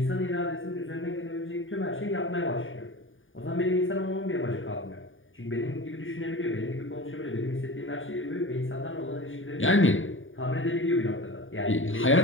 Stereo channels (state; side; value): late; right; 0.58 ms